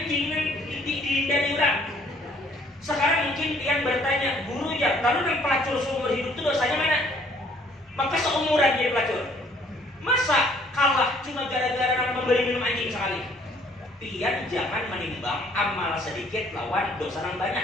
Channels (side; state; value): both; normal; correlation 0.61